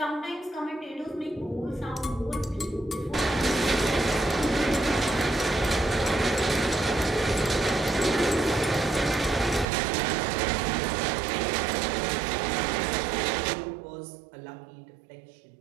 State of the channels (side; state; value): left; drops out; at 9.7 s